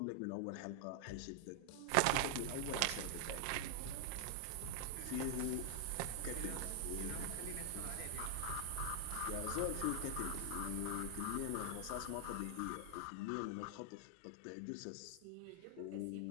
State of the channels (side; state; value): both; different; correlation 0.00